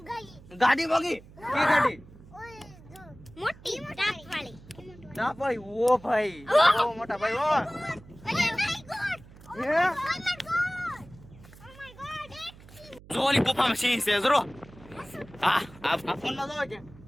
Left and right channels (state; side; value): noise; right; hum, 21 dB below the sound